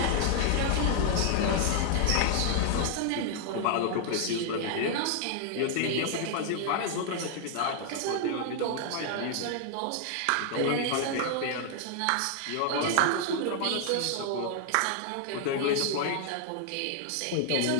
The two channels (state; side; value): different; both; correlation 0.00